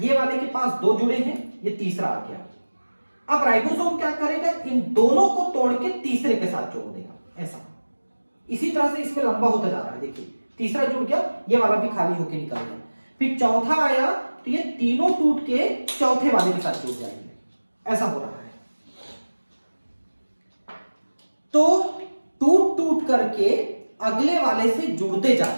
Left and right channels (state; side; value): inverted; both; correlation -1.00